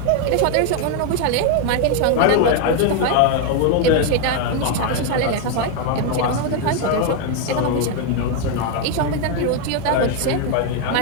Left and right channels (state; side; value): different; both; correlation 0.01